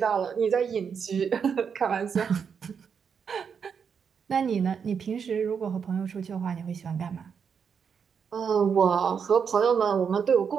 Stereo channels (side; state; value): left; quieter; 6.7 dB